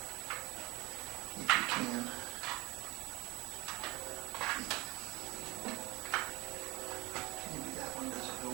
If you can. Maybe that one doesn't go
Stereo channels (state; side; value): quieter; left; 22.9 dB